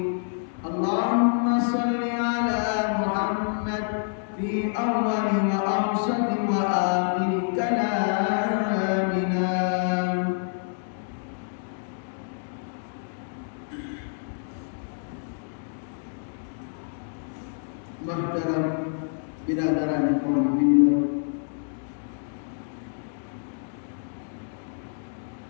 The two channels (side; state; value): right; silent; digital silence